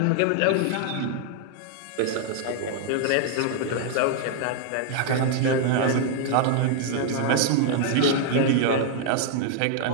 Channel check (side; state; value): both; different; correlation 0.00